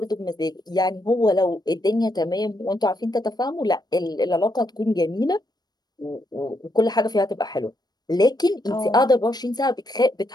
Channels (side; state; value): right; late; 0.19 ms